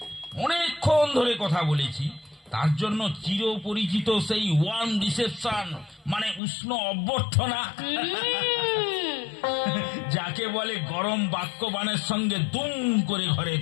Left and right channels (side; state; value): right; drops out; at 6.4 s